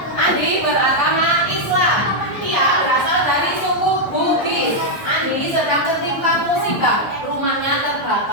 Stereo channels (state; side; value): late; right; 1.1 ms